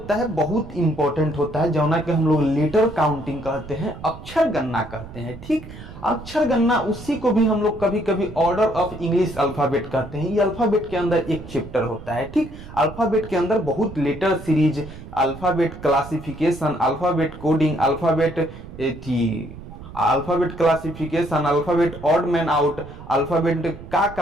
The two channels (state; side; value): noise; right; rumble, 14 dB below the sound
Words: है, बहुत इंपॉर्टेंट होता है, जौना के हम लोग लेटर काउंटिंग कहते हैं, अक्षर गणना कहते हैं। ठीक, अक्षर गणना उसी को भी हम लोग कभी कभी ऑर्डर ऑफ इंग्लिश अल्फाबेट कहते हैं। ये अल्फाबेट के अंदर एक चैप्टर होता है। ठीक, अल्फाबेट के अंदर बहुत letter series, alphabet classification, alphabet coding, alphabet alphabet classification, alphabet odd man out, alphabet का